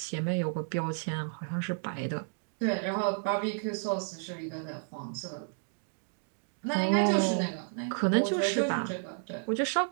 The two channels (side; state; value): left; silent; 57 dB below the other